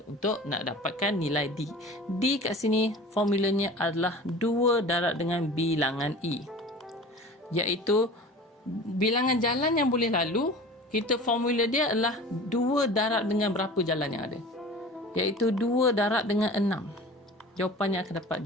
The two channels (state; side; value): normal; both; correlation 0.39